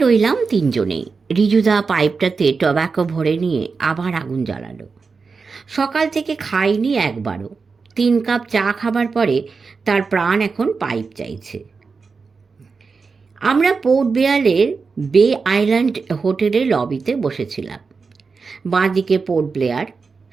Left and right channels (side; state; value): left; quieter; 4.8 dB